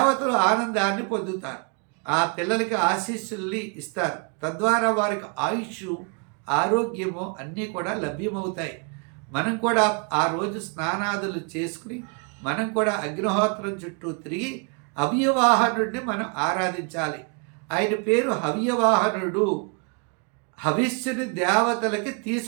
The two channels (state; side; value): quieter; left; 36.5 dB